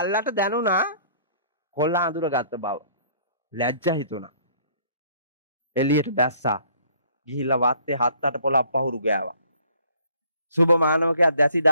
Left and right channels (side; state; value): both; inverted; correlation -0.58